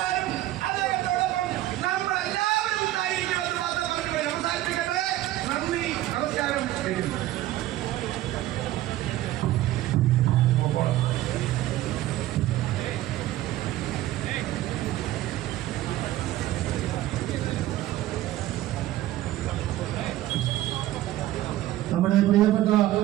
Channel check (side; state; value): left; quieter; 14.9 dB